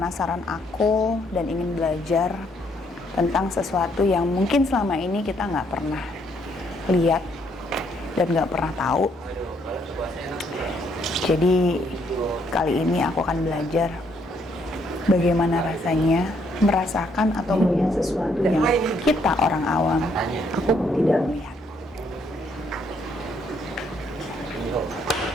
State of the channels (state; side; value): normal; both; correlation 0.71